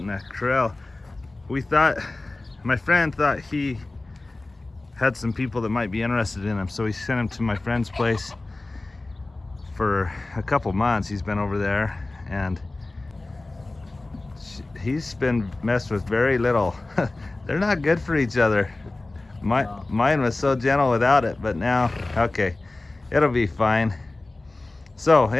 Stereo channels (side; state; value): right; quieter; 3.0 dB